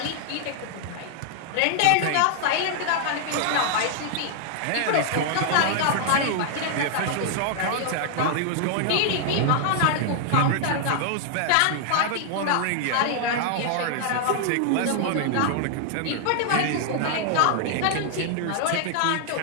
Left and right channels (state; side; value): different; both; correlation 0.00